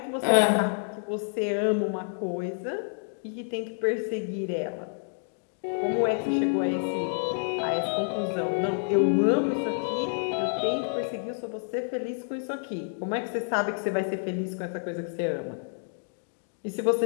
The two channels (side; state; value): right; silent; digital silence